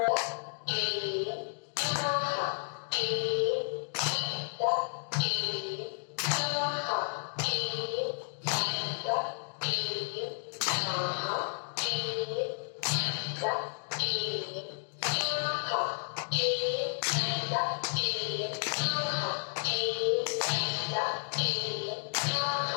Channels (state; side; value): silent; right; 56 dB below the other